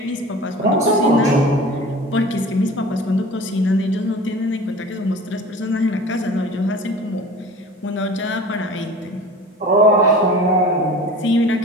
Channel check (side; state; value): both; normal; correlation 0.40